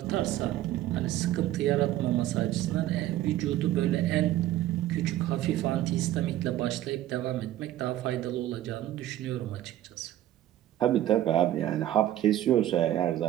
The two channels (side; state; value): left; quieter; 13.4 dB